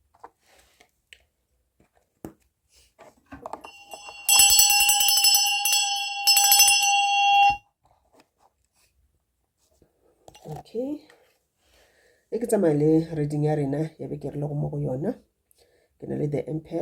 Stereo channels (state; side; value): identical; both; correlation 1.00